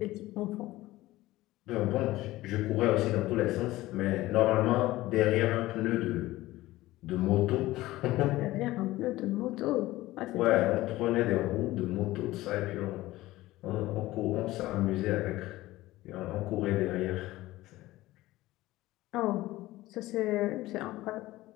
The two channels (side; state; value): right; quieter; 17.4 dB